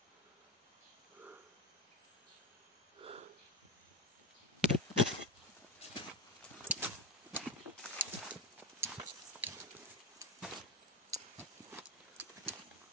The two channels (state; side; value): normal; both; correlation 0.18